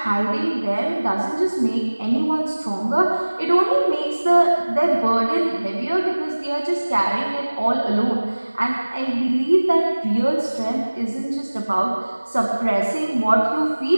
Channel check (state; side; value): inverted; both; correlation -1.00